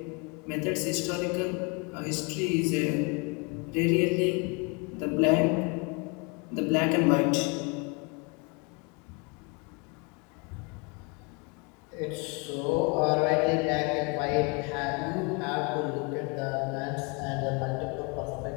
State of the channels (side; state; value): right; quieter; 31.6 dB